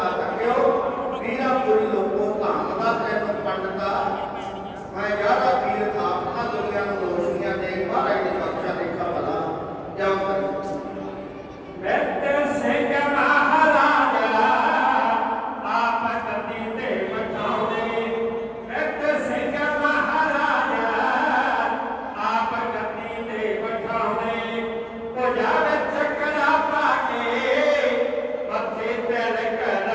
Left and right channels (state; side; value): identical; both; correlation 1.00